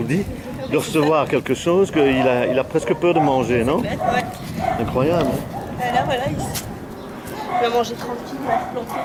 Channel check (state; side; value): identical; both; correlation 1.00